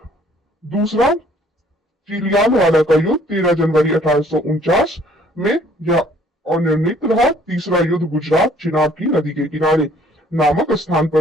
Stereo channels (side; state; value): both; normal; correlation 0.59